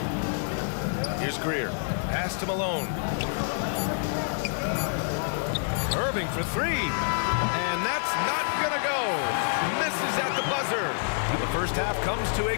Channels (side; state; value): right; silent; 60 dB below the other